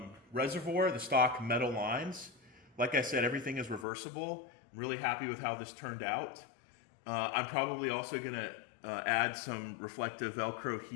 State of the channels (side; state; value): right; drops out; at 3.9 s